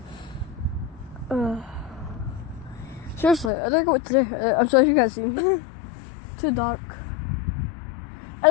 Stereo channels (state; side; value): drops out; right; at 3.5 s